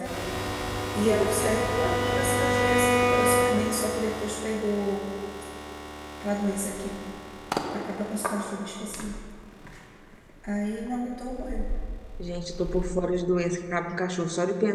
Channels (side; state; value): both; identical; correlation 1.00